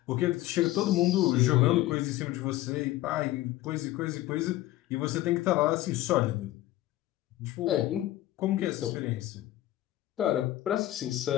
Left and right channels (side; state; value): right; quieter; 15.6 dB